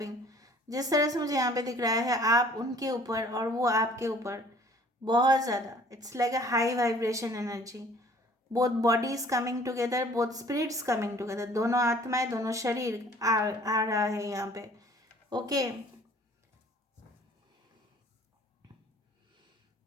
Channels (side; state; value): both; normal; correlation 0.53